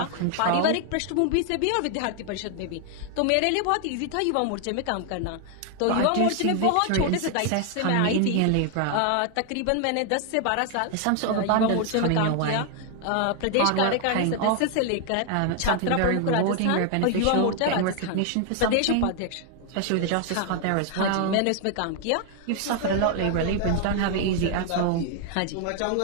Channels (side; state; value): both; different; correlation 0.00